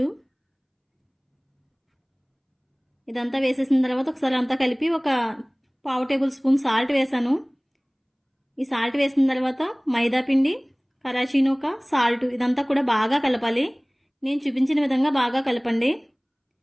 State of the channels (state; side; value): identical; both; correlation 1.00